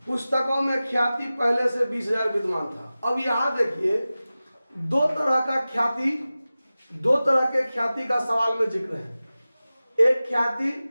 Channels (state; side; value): inverted; both; correlation -0.96